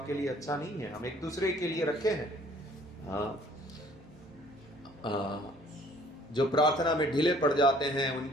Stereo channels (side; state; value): both; normal; correlation 0.57